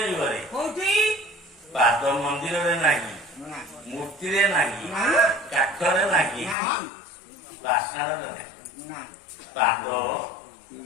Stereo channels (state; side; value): drops out; right; at 6.6 s